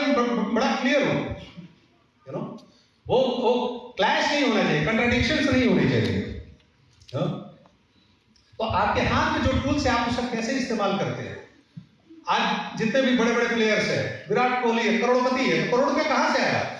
में बड़ा क्लियर हूं, यू नो। वो क्लैश नहीं होना चाहिए, कंट्राडिक्शंस नहीं होनी चाहिए। तो आपके हाथ में जो टूल्स है आप उसका कैसे इस्तेमाल करते हैं। आज जितने भी बड़े बड़े प्लेयर्स हैं, विराट कोहली है, करोड़पति है, तो करोड़ रुपए कहां से आया,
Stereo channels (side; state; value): both; identical; correlation 1.00